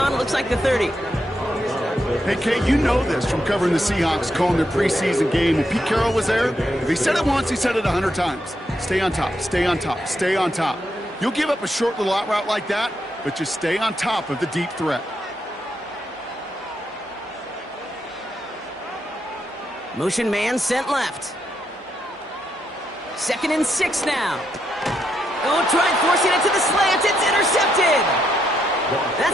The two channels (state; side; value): normal; both; correlation 0.80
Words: it looks like the 30. Hey, Kate, you know this from covering the Seahawks, calling their preseason game. When Pete Carroll was there, if he said it once, he said it 100 times. Stay on top, stay on top, stay on top. You'll give up a short little out route like that, but just stay on top of the deep threat. Motion man sent left. 2nd and 6 now. Oh, try forcing it to the slant. It's intercepted.